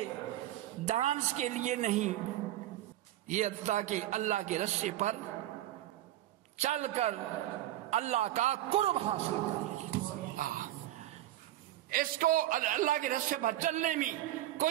ڈانس کے لیے نہیں، یہ تاکہ اللہ کے راستے پر چل کر اللہ کا قرب حاصل کر. اس کو اللہ کے راستے پر چلنے میں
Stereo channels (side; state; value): left; quieter; 14.2 dB